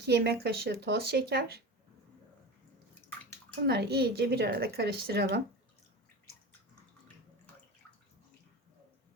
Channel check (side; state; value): both; normal; correlation 0.28